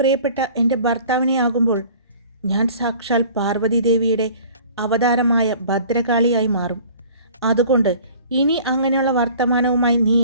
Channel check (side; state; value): both; inverted; correlation -0.48